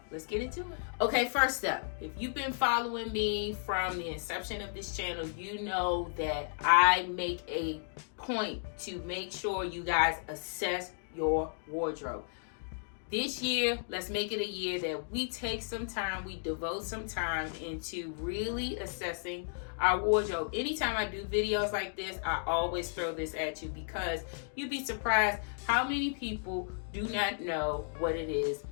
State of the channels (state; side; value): silent; right; digital silence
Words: let's get into it. Okay, first up, if you've been following me from the inception of this channel, you know that I make a point to make sure you guys assess your wardrobe. This year, let's make it a year that we take some time, we devote some time into really assessing our wardrobe. Anytime I do videos like this, I always throw this at you, because you'd be surprised how many people do not know what it is